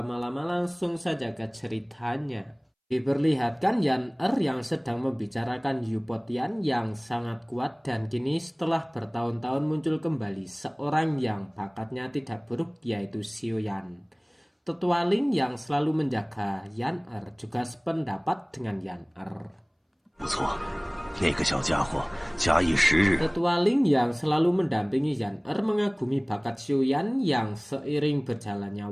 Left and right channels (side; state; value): both; identical; correlation 1.00